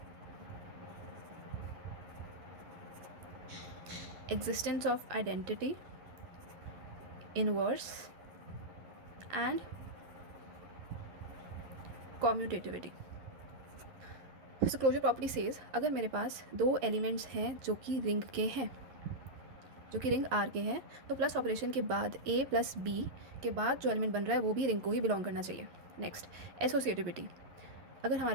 existence of identity, inverse and commutativity. So closure property says अगर मेरे पास दो एलिमेंट्स हैं जो कि रिंग के हैं, जो कि रिंग आर के हैं, तो प्लस ऑपरेशन के बाद ए प्लस बी के बाद जो एलिमेंट बन रहा है वो भी रिंग को ही बिलोंग करना चाहिए। Next, associativity. अगर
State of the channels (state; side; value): late; left; 11 ms